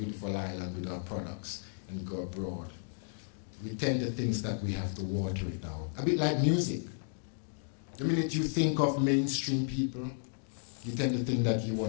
island with our products and go abroad. We tend to think that we have to water it down. A bit like music. The minute you think of mainstream people, you tend to think that you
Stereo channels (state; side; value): silent; right; digital silence